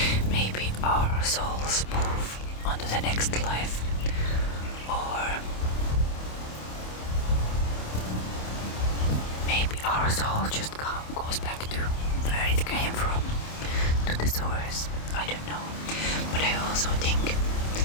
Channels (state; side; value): late; right; 27 ms